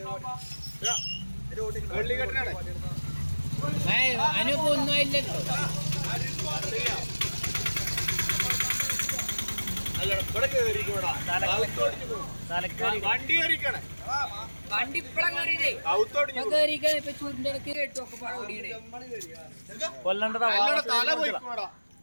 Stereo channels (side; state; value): both; inverted; correlation -1.00